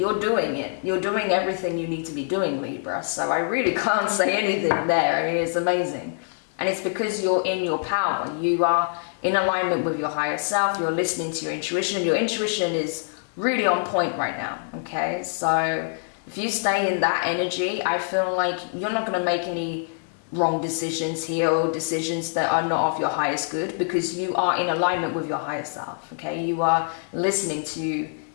doing it. You're doing everything you need to be doing, Libra. So I really can't say anything there. I mean, it's amazing. And it's because you're in your power. You are in alignment with your higher self. You're listening to your intuition. Your intuition is really on point right now, okay? So if you stay in that energy, I feel like you're not going to make any wrong decisions here or decisions that are not of your highest good, because you are in alignment with your higher self, okay? You are listening to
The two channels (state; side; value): silent; right; digital silence